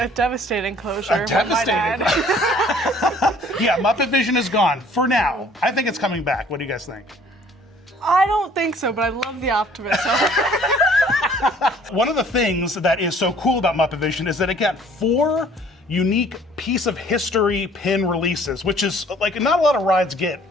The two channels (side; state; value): both; normal; correlation 0.56